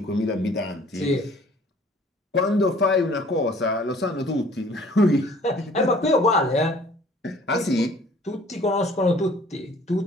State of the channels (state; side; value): normal; both; correlation 0.54